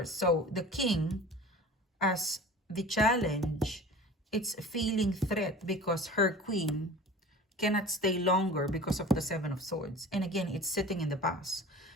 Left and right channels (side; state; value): both; normal; correlation 0.39